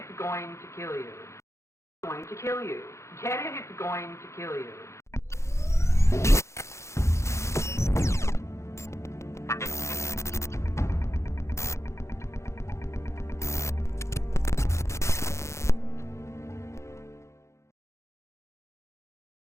going to kill you. It's going to kill you. Get it? It's going to kill you.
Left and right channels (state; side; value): late; right; 0.14 ms